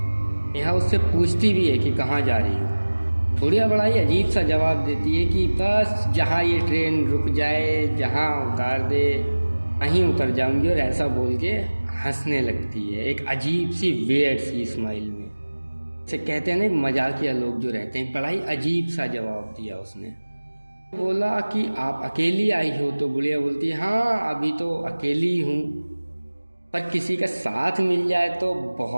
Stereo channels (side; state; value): both; inverted; correlation -1.00